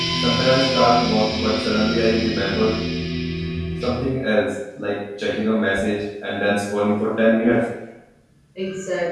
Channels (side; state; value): both; identical; correlation 1.00